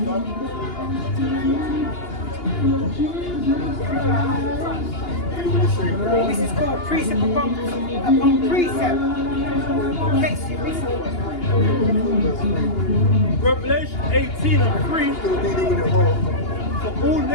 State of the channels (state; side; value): late; right; 2.8 ms